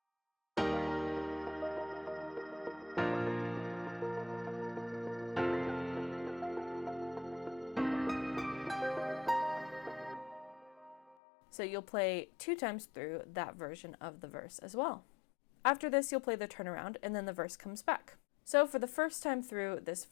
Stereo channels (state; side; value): drops out; right; at 11.2 s